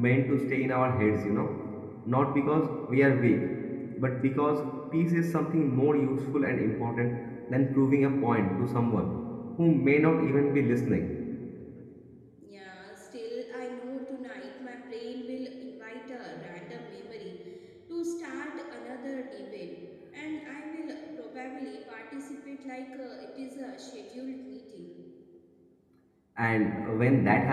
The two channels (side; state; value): both; identical; correlation 1.00